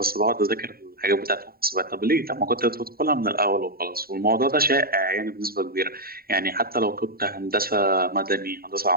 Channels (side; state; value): left; late; 0.43 ms